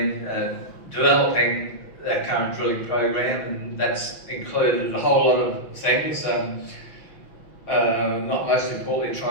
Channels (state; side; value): late; right; 6.0 ms